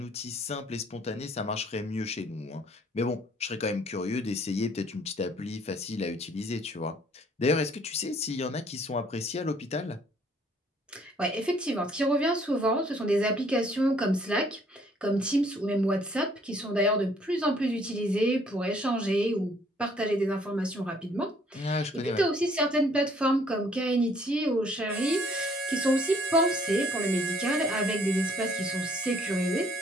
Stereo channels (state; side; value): normal; both; correlation 0.61